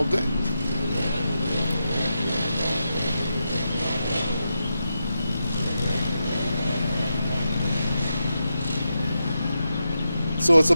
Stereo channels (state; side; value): inverted; both; correlation -0.87